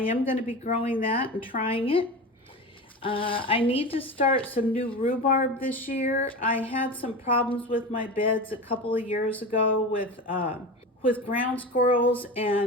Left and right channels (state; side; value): normal; both; correlation 0.27